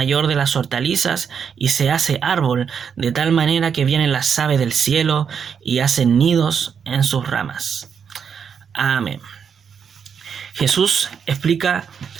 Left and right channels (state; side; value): quieter; left; 7.0 dB